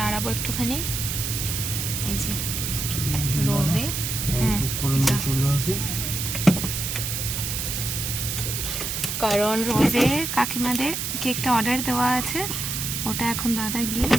একটুখানি, এই যে রোজে। কারণ রোজে কাকিমাদের কেকটা অর্ডার দেওয়া আছে, ওটা এখন দাদা গিয়ে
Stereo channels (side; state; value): right; noise; hiss, 3 dB below the sound